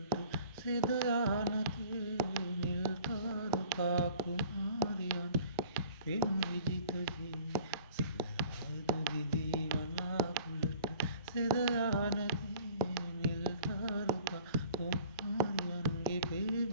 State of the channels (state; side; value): inverted; both; correlation -0.47